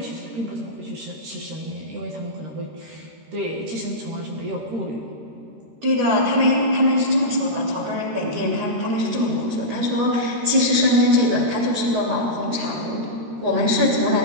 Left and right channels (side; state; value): left; late; 13 ms